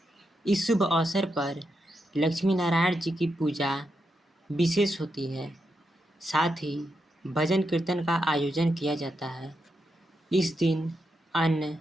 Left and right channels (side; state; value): both; normal; correlation 0.84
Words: इस शुभ अवसर पर लक्ष्मी नारायण जी की पूजा विशेष होती है। साथ ही भजन कीर्तन का आयोजन किया जाता है। इस दिन अन्न